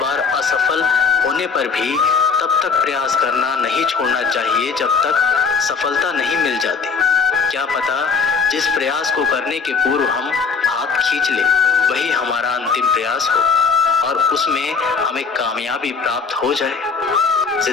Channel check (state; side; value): quieter; right; 5.3 dB